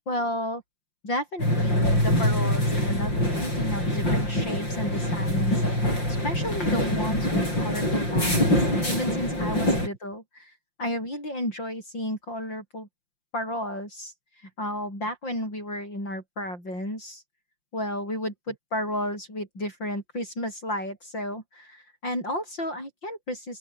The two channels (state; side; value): late; right; 5.7 ms